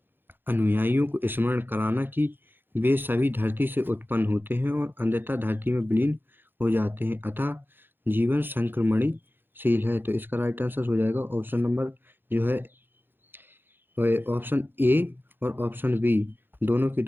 अनुयायियों को स्मरण कराना कि वे सभी धरती से उत्पन्न होते हैं और अंततः धरती में विलीन हो जाते हैं, अतः जीवन संक्रमणीशील है। तो इसका राइट आंसर हो जाएगा ऑप्शन नंबर जो है ऑप्शन ए और ऑप्शन बी दोनों के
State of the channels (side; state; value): left; late; 0.099 ms